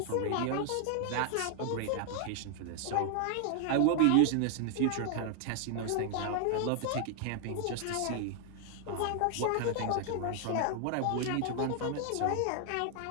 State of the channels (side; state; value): both; different; correlation 0.00